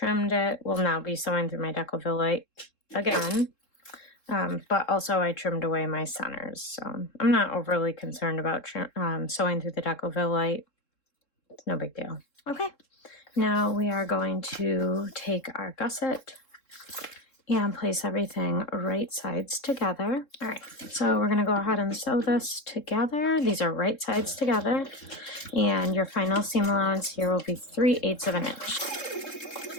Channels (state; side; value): late; right; 3.7 ms